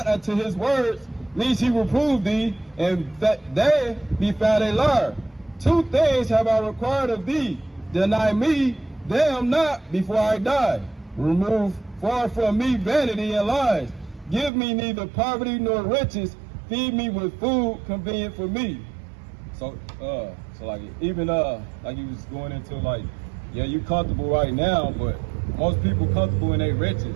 unto his words, lest he reprove thee, and that they be found a liar. Two things have I required of thee. Deny me them not before I die. Remove far from me vanity and lies. Give me neither poverty nor riches. Feed me with food convenient for me. So like even like you was going into like, yeah, you comfortable right now, but most people comfortable in their riches.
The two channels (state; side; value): drops out; left; at 14.5 s